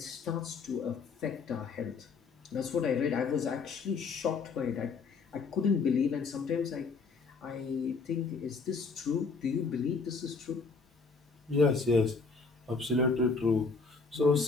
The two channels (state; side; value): quieter; right; 4.6 dB